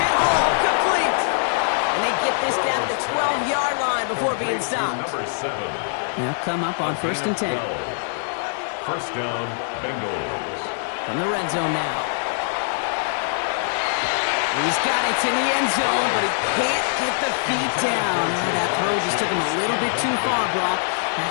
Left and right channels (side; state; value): right; silent; 64 dB below the other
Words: hit home, complete. And they get this down to the 12-yard line before being stopped. Number 7. They'll come up on 1st and 10. First down, Bengals. From the red zone now. He's got it in the end zone, but he can't get the feet down. That throw just took him a little bit too far, Brock.